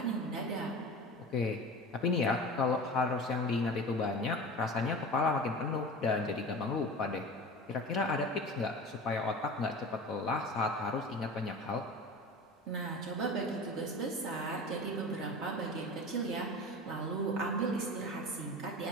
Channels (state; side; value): normal; both; correlation 0.34